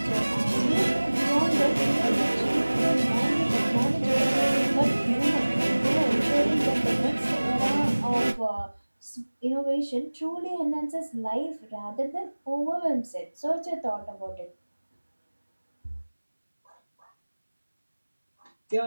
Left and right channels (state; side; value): inverted; both; correlation -1.00